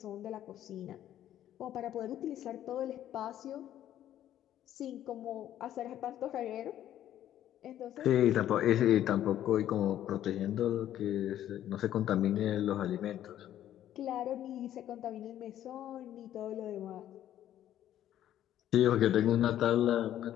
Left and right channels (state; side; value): quieter; right; 11.8 dB